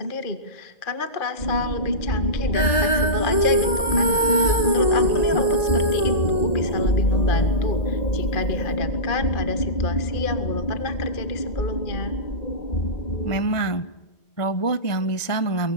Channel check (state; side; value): late; right; 1.7 ms